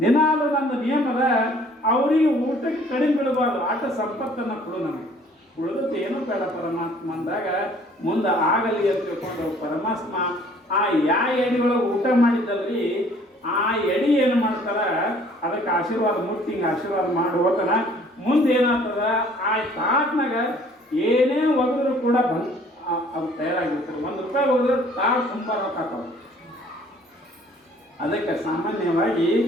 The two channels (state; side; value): normal; both; correlation 0.56